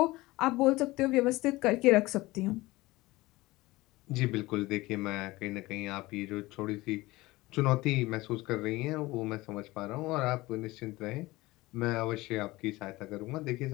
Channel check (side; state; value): right; quieter; 20.1 dB